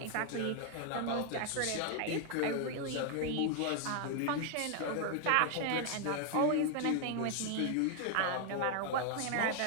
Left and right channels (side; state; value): both; different; correlation 0.00